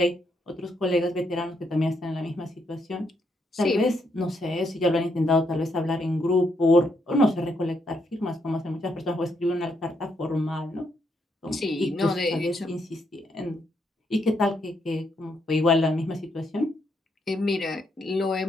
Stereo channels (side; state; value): both; normal; correlation 0.77